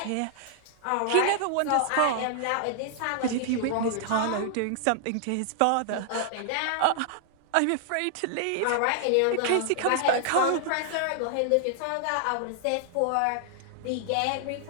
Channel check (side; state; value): both; different; correlation -0.01